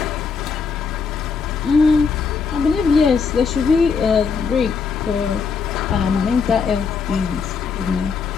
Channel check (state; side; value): quieter; right; 5.5 dB